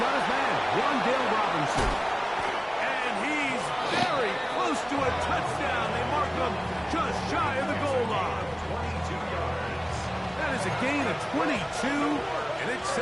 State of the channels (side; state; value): both; identical; correlation 1.00